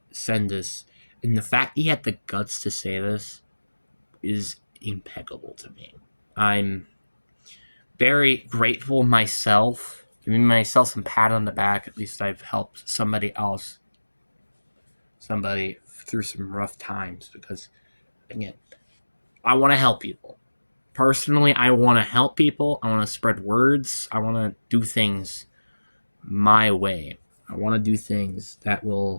send this, and the fact he had the guts to say this is impeccable to me. I'm very grateful myself, giving myself some pat on the back. At least I've helped somebody through some rough times because, again, I want to help people. Personally, I want to help people. I want to spread words. I want to do things my way. I want to do things that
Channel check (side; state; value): both; inverted; correlation -1.00